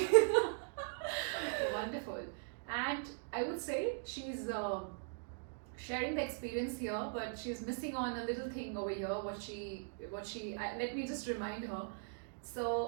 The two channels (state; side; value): silent; left; digital silence